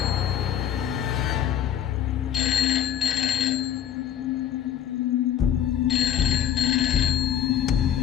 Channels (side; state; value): right; quieter; 10.1 dB